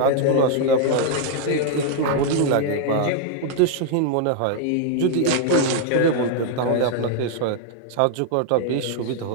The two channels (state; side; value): different; both; correlation 0.00